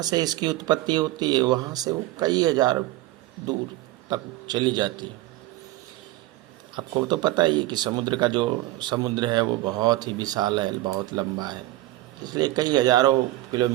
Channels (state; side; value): quieter; left; 16.6 dB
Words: से इसकी उत्पत्ति होती है वहाँ से वो कई हजार दूर तक चली जाती है। आपको तो पता ही है कि समुद्र का जो समुद्र है वो बहुत ही विशाल है, बहुत लंबा है, इसलिए कई हजारों